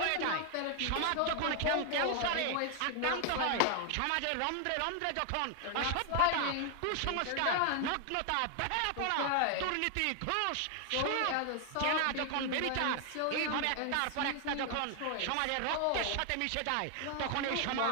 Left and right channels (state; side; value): different; both; correlation 0.00